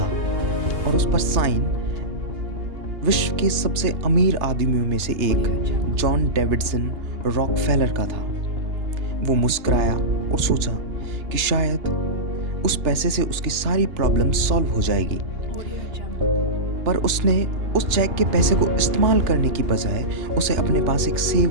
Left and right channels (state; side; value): late; left; 2.8 ms